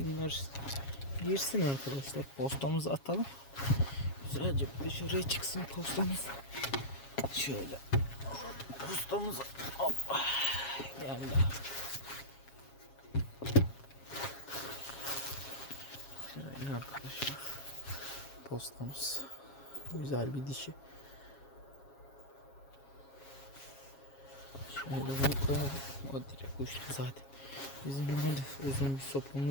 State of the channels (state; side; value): late; right; 7.3 ms